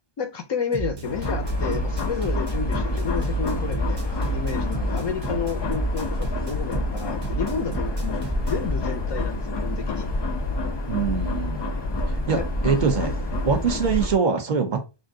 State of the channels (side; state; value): right; late; 1.2 ms